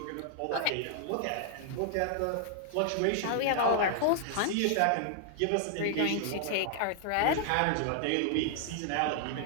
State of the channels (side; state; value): both; different; correlation 0.00